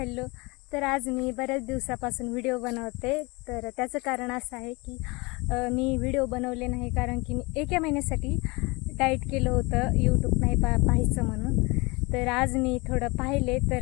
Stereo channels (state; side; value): quieter; right; 26.1 dB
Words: तर आज मी बऱ्याच दिवसापासून व्हिडिओ बनवते. तर त्याचं कारण असं आहे की मी व्हिडिओ बनवले नाही कारण की मी एका महिन्यासाठी डाएट केलं होतं, यूट्यूब नाही पाहायचं म्हणून. तर आज मी थोडं पाहिले